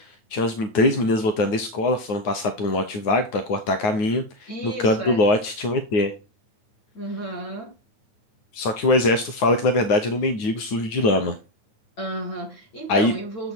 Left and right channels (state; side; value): late; right; 9.5 ms